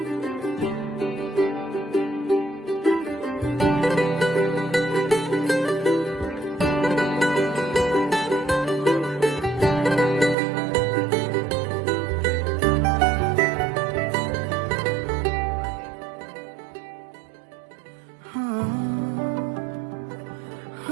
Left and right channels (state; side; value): drops out; left; at 10.4 s